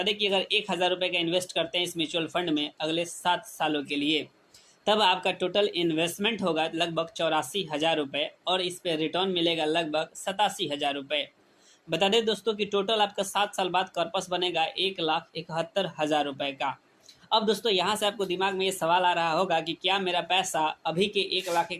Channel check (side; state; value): both; identical; correlation 1.00